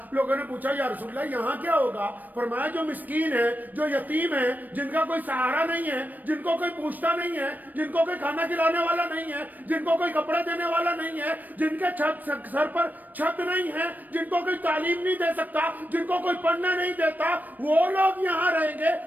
لوگوں نے پوچھا یا رسول اللہ یہاں کیا ہوگا؟ فرمایا جو مسکین ہے، جو یتیم ہے، جن کا کوئی سہارا نہیں ہے، جن کو کوئی پوچھتا نہیں ہے، جن کو کوئی کھانا کھلانے والا نہیں ہے، جن کو کوئی کپڑے دینے والا نہیں ہے، جن کے سر پر چھت نہیں ہے، جن کو کوئی تعلیم نہیں دے سکتا، جن کو کوئی پڑھنے نہیں دیتا، وہ لوگ یہاں رہیں گے.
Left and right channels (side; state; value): left; late; 0.085 ms